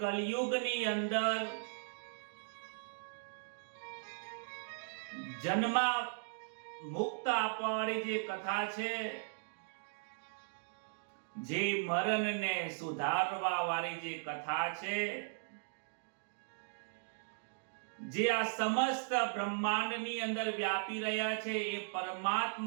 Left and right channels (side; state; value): left; silent; digital silence